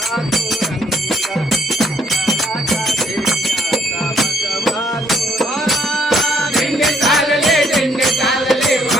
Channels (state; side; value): normal; both; correlation 0.68